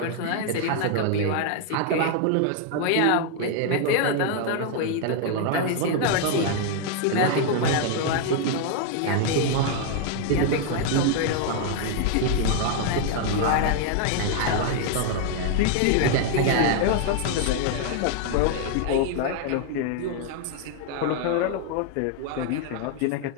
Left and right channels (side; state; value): both; different; correlation 0.00